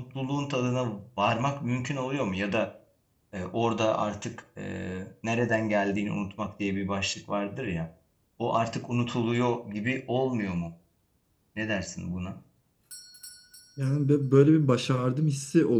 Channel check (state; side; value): identical; both; correlation 1.00